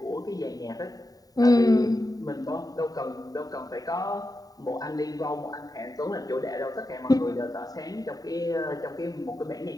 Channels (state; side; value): late; right; 0.18 ms